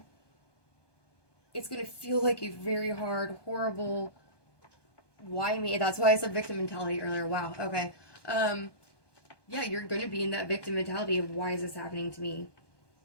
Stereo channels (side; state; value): right; late; 1.2 ms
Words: It's going to feel like a very hard, horrible, why me? That's why I said victim mentality earlier. Wow. Okay. Yeah, you're going to be in that victim mentality of why is this happening to me?